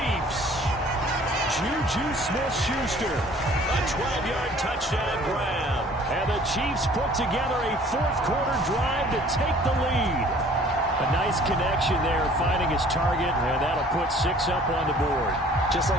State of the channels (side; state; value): both; normal; correlation 0.53